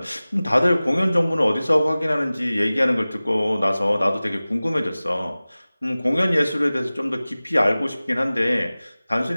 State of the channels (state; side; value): inverted; both; correlation -0.98